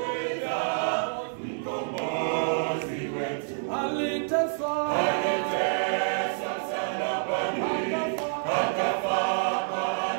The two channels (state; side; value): silent; left; digital silence